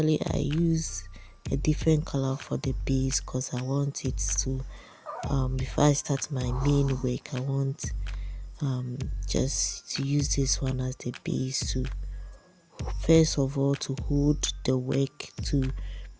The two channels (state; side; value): identical; both; correlation 1.00